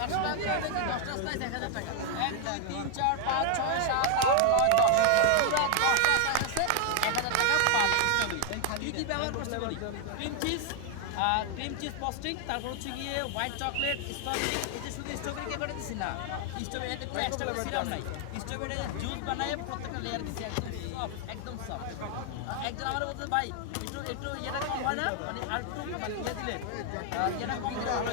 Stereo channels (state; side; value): different; both; correlation 0.00